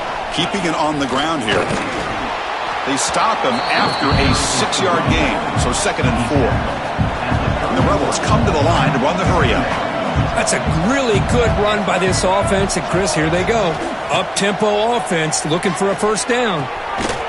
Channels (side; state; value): both; identical; correlation 1.00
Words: Keeping it on the ground here. They stop him after a 6-yard gain. So 2nd and 4. And the Rebels come to the line to run the hurry-up. That's a really good run by this offense. And, Chris, here they go. Up-tempo offense looking for a first down.